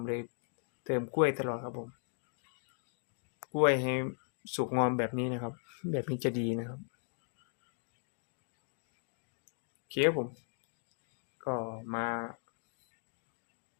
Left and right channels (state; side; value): silent; right; 53 dB below the other